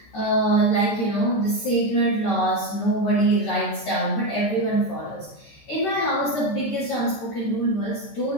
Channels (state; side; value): late; right; 14 ms